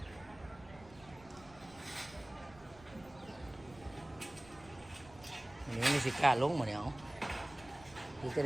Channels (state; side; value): noise; right; rumble, 21 dB below the sound